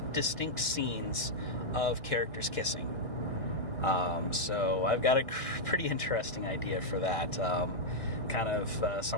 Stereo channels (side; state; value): right; late; 1.8 ms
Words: distinct scenes of characters kissing. So I've got a pretty interesting idea for that. Kind of